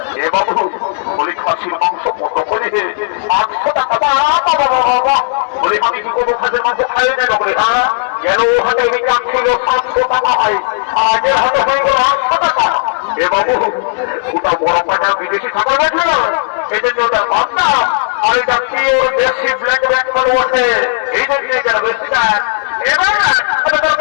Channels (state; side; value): silent; right; digital silence